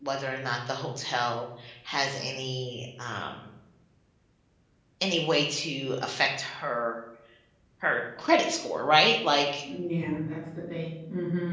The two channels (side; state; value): both; identical; correlation 1.00